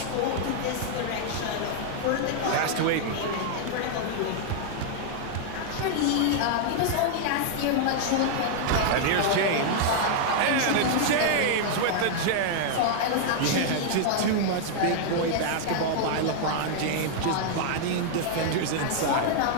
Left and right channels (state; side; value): different; both; correlation -0.01